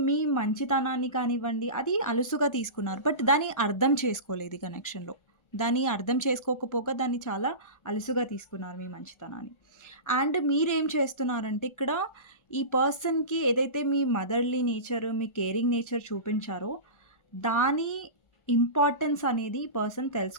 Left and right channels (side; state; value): right; late; 1.4 ms